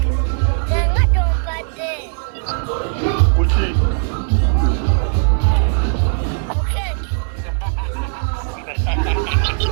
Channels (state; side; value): silent; left; digital silence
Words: tenga tompadde kuki